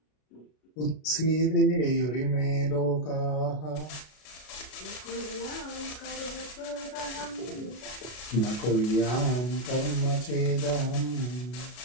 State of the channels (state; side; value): late; right; 33 ms